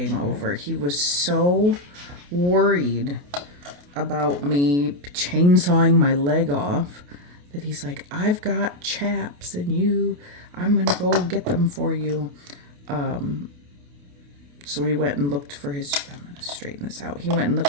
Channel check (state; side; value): late; left; 28 ms